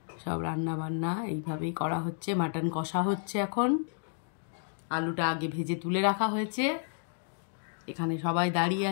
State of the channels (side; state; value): right; silent; digital silence